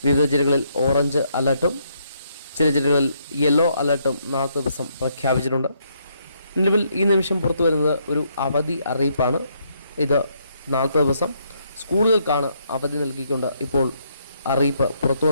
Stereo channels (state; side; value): inverted; both; correlation -0.74